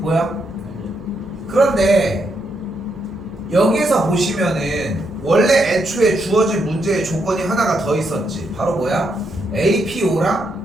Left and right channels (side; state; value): right; noise; hum, 26 dB below the sound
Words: 보여? 그런데 여기에서 보시면은 원래 애초에 주어진 문제의 조건이 하나가 더 있었지. 바로 뭐야? APO랑